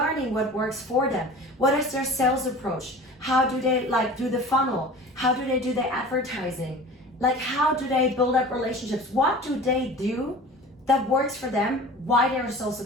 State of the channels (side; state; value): both; normal; correlation 0.39